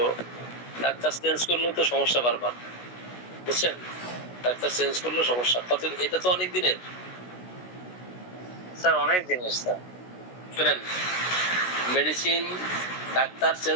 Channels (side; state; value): right; late; 16 ms